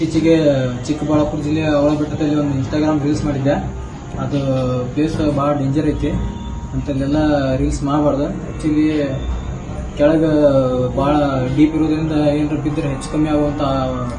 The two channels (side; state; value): both; identical; correlation 1.00